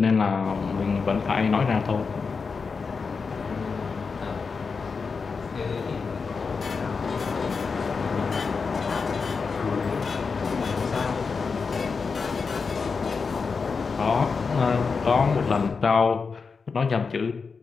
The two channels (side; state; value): right; quieter; 5.0 dB